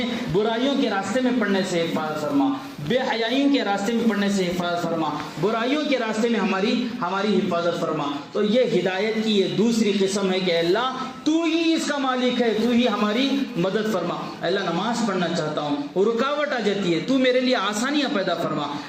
برائیوں کے راستے میں پڑنے سے حفاظت فرما، بے حیائیوں کے راستے میں پڑنے سے حفاظت فرما، برائیوں کے راستے میں ہماری حفاظت فرما۔ تو یہ ہدایت کی یہ دوسری قسم ہے کہ اللہ تو ہی اس کا مالک ہے، تو ہی ہماری مدد فرما۔ اے اللہ نماز پڑھنا چاہتا ہوں، رکاوٹ آ جاتی ہے، تو میرے لیے آسانیاں پیدا فرما۔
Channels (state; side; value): identical; both; correlation 1.00